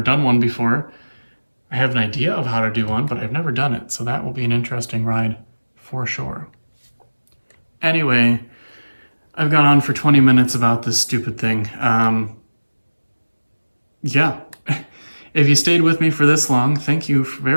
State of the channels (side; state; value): both; inverted; correlation -1.00